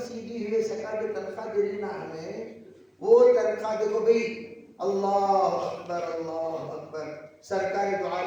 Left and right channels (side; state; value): both; identical; correlation 1.00